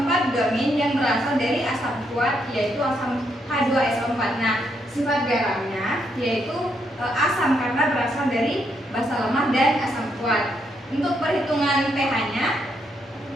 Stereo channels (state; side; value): normal; both; correlation 0.77